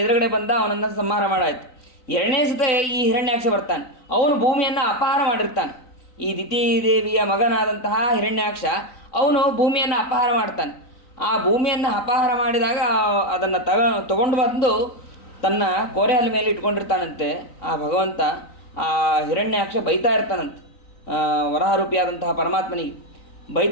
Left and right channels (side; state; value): right; late; 3.9 ms